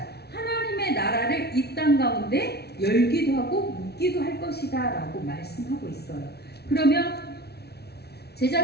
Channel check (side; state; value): right; late; 0.48 ms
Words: 하나님의 나라를 이 땅 가운데 열기도 하고 묶기도 할 것이다 라고 말씀하고 있어요. 그러면